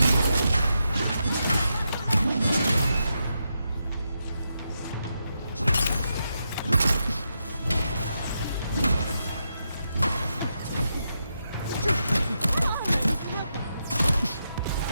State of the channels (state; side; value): inverted; both; correlation -0.84